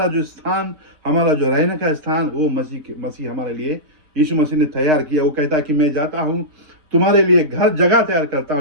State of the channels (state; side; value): late; left; 6.7 ms